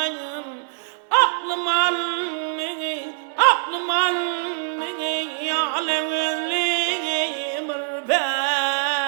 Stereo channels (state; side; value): silent; left; 63 dB below the other